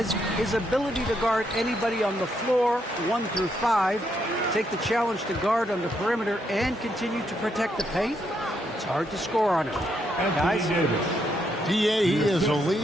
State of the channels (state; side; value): normal; both; correlation 0.77